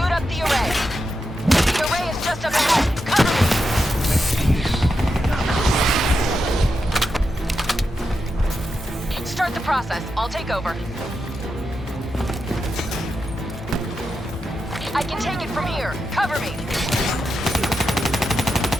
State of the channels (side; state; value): both; normal; correlation 0.87